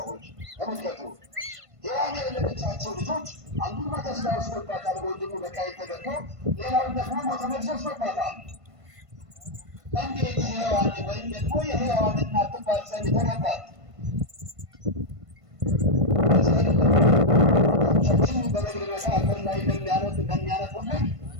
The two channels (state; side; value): late; left; 1.5 ms